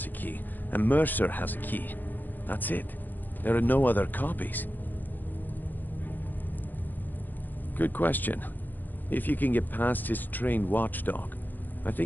a key, and Mercer has a key. That's it. There are no other copies. Good question. If you can get past his trained watchdog, I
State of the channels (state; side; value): late; right; 0.087 ms